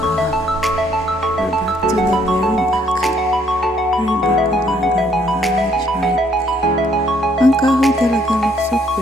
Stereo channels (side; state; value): both; normal; correlation 0.67